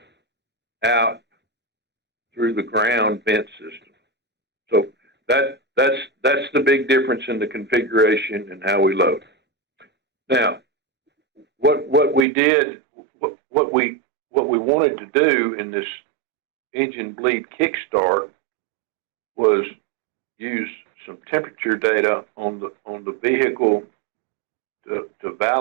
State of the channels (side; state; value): left; drops out; at 12.2 s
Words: out through the ground vent system. So that's the big difference in the configuration and how we load. Now, what we wanted to do in this engine bleed Kickstart was use some temperature data on the vehicle to